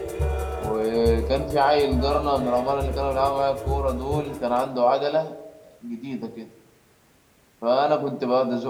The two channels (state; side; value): identical; both; correlation 1.00